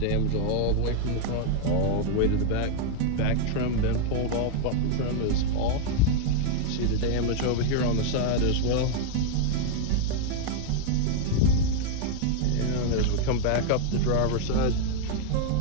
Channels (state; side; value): different; both; correlation 0.00